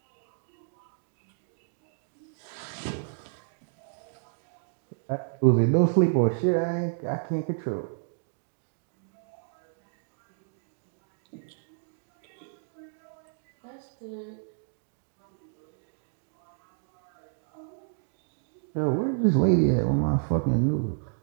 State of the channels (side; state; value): left; silent; digital silence